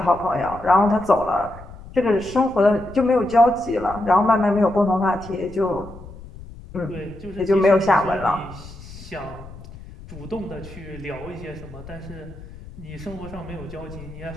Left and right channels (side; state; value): left; noise; rumble, 16 dB below the sound